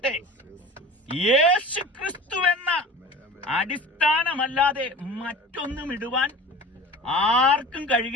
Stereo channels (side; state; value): both; normal; correlation 0.38